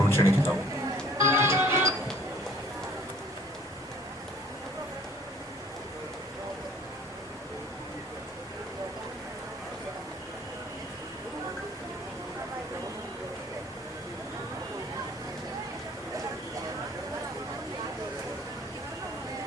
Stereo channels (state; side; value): normal; both; correlation 0.55